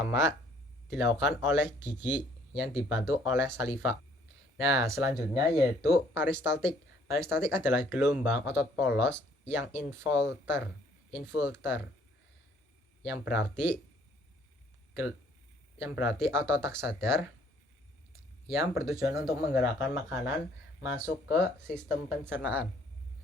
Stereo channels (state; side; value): normal; both; correlation 0.61